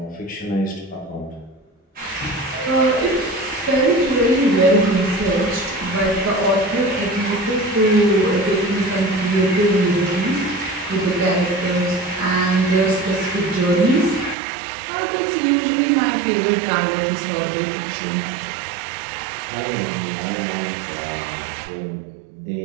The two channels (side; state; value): left; drops out; at 14.4 s